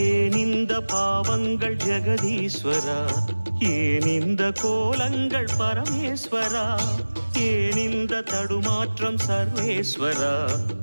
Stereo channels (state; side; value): inverted; both; correlation -1.00